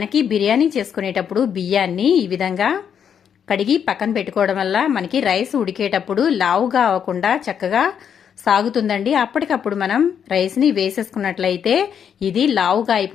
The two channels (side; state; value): right; quieter; 8.1 dB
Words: బిర్యానీ చేసుకునేటప్పుడు బియ్యాన్ని ఈ విధంగా కడిగి పక్కన పెట్టుకోవడం వల్ల మనకి రైస్ ఉడికేటప్పుడు లావుగా అవ్వకుండా చక్కగా సాగుతుందండి. అప్పటికప్పుడు మనం రైస్ని వేసేసుకున్నట్లయితే ఇది లావుగా